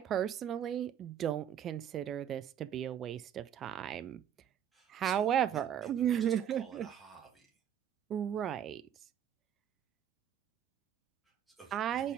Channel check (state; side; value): quieter; left; 9.5 dB